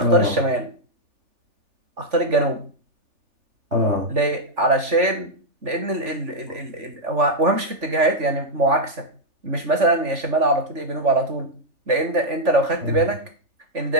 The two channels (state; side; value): late; left; 3.5 ms